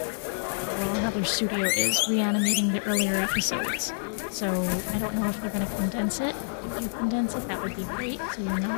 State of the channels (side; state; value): right; silent; 60 dB below the other